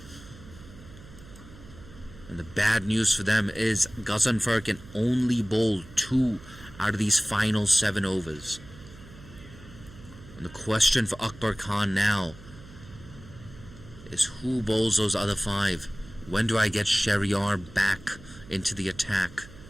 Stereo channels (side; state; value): right; noise; hum, 19 dB below the sound